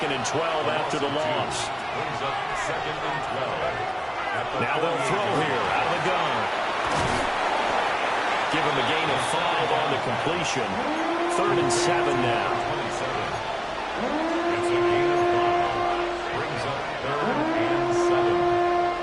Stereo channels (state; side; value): identical; both; correlation 1.00